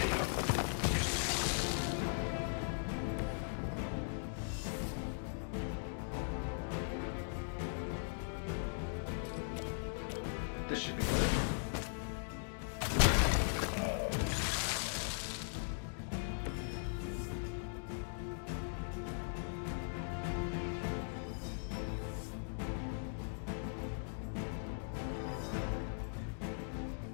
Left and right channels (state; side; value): silent; right; digital silence